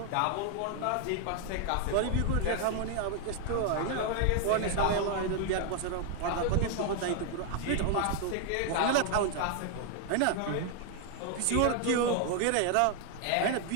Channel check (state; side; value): different; both; correlation 0.00